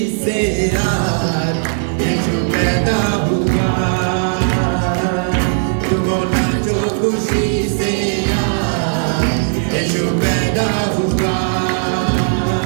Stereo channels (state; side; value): silent; left; digital silence